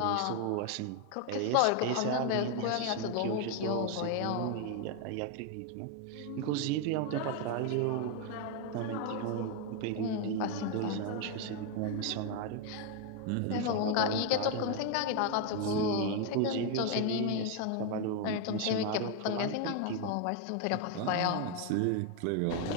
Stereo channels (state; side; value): different; both; correlation 0.01